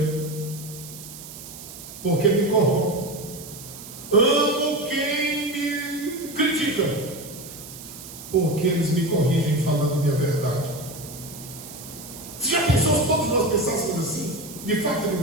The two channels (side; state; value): right; noise; hiss, 14 dB below the sound